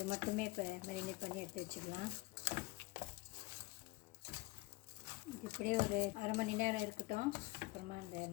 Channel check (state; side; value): quieter; right; 22.6 dB